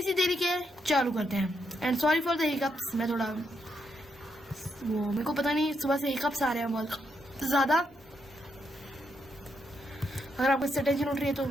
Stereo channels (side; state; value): both; normal; correlation 0.79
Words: देरी के चालू करते हैं। And sorry for the hiccups, मैं थोड़ा वो मेरे को पता नहीं सुबह से हिकअप्स आ रहे हैं बहुत ज़्यादा। अगर आपको इससे टेंशन उठ रही है तो